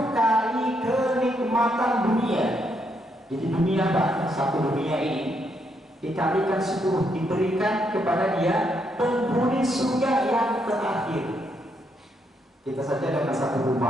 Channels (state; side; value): normal; both; correlation 0.77